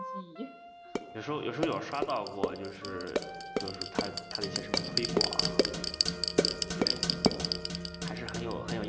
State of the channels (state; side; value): identical; both; correlation 1.00